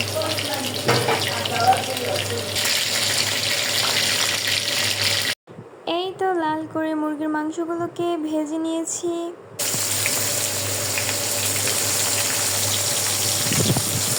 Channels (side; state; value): both; identical; correlation 1.00